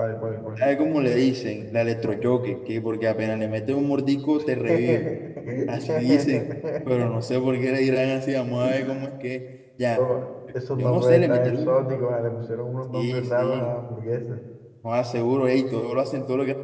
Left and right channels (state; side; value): identical; both; correlation 1.00